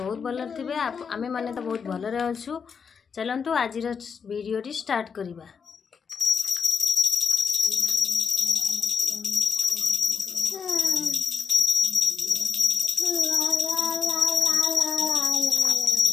भल थे। आमे माने तो बहुत भल अच्छु। चलतु आज वीडियो स्टार्ट करिबा।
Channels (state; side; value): quieter; right; 6.3 dB